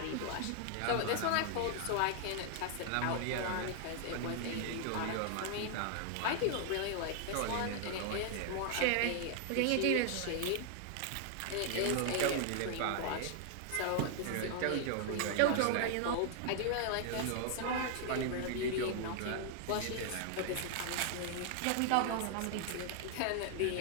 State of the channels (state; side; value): different; both; correlation 0.00